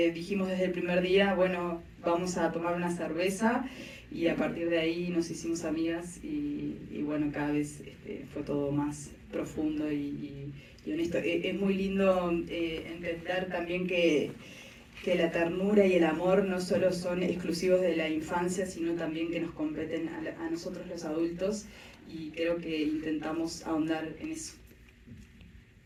desde el primer día, bueno, vamos a tomar una cerveza y a partir de ahí nos hicimos amigas y bueno, cada vez fue todo más profundo y honesto. Es muy lindo entender también que la ternura y el amor no solo son exclusivos de la infancia, sino también que nos competen a nosotros los adultos y creo que intentamos ahondar en eso.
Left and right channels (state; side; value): identical; both; correlation 1.00